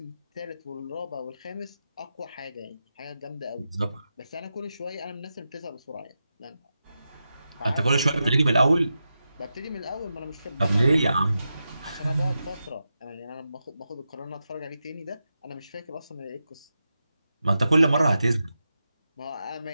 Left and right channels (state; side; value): inverted; both; correlation -0.89